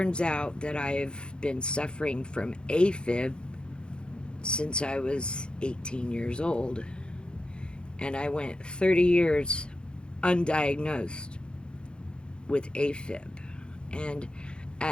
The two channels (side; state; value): right; late; 0.052 ms